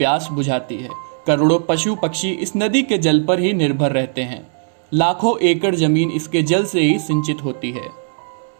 बुझाती है। करोड़ों पशु पक्षी इस नदी के जल पर ही निर्भर रहते हैं। लाखों एकड़ जमीन इसके जल से ही सिंचित होती है।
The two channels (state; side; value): silent; left; digital silence